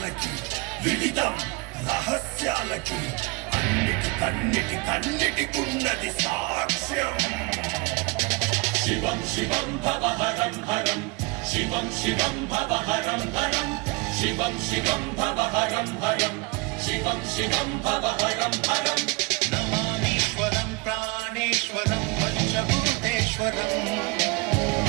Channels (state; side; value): quieter; left; 26.9 dB